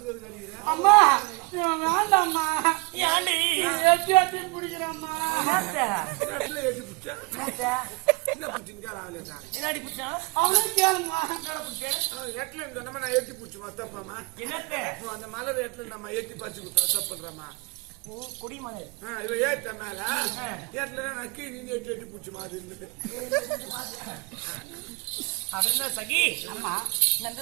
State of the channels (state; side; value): quieter; left; 27.4 dB